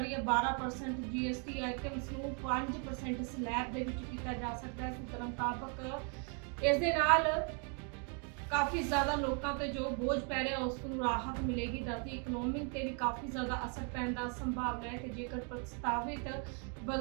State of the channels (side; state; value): left; quieter; 38.8 dB